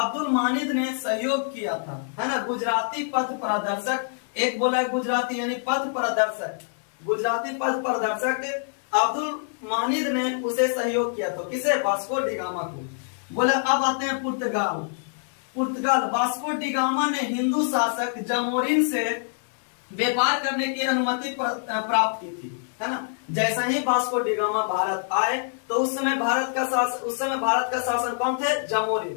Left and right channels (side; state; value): right; silent; digital silence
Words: मानिद ने सहयोग किया था, है ना। गुजराती पथ प्रदर्शक, एक बोला गुजराती यानी पथ प्रदर्शक, गुजराती पथ प्रदर्शक अब्दुल मानिद ने उसे सहयोग किया था। किसे? वास्को डी गामा को। बोला अब आते हैं पुर्तगाल। वास्को डी गामा ने हिंदू शासक जमोरिन से व्यापार करने की अनुमति प्राप्त की थी, है ना। जैसा ही वास्को डी गामा भारत आए तो उस समय भारत का शासन कौन थे?